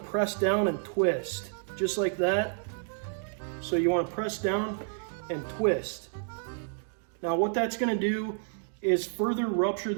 down and twist, just like that. So you wanna press down and twist. Now what that's gonna do is further rupture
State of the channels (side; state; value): left; silent; digital silence